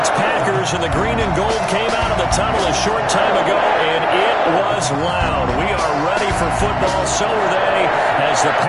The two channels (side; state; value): both; identical; correlation 1.00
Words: Packers, and the green and gold came out of the tunnel a short time ago, and it was loud. We are ready for football, so are they, as the